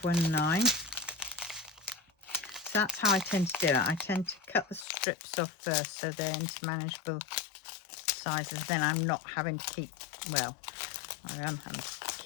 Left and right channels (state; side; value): drops out; right; at 4.9 s